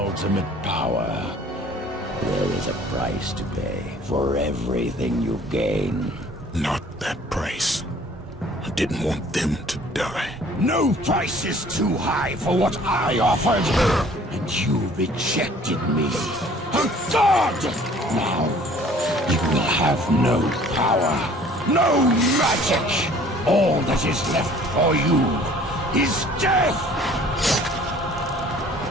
power. There is a price to pay for everything you gain. Not that price. I didn't want them to die. No price is too high for what I offered. And you rejected me. A god! Now, you will have no power, no magic. All that is left for you is death!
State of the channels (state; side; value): normal; both; correlation 0.53